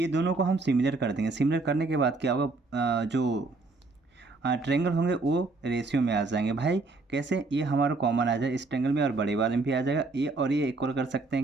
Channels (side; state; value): left; quieter; 3.6 dB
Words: दोनों को हम सिमिलर कर देंगे, सिमिलर करने के बाद क्या होगा, जो ट्रायंगल होंगे वो रेशियो में आ जाएंगे। भाई कैसे, ये हमारा कॉमन आ जाए इस ट्रायंगल में और बड़े वाले में भी आ जाएगा, ये और ये इक्वल कर सकते